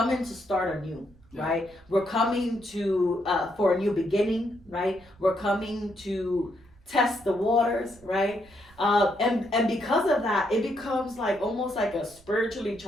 to start anew, right? We're coming to for a new beginning, right? We're coming to test the waters, right? And because of that, it becomes like almost like a spiritually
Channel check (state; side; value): noise; right; rumble, 26 dB below the sound